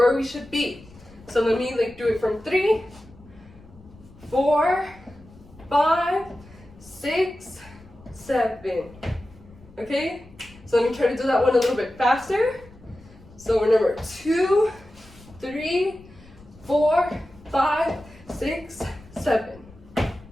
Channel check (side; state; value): left; noise; rumble, 24 dB below the sound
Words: we should be. So let me like do it from 3, 4, 5, 6, 7. Okay, so let me try to do that one a little bit faster. So remember, 2, 3, 4, 5, 6, 7.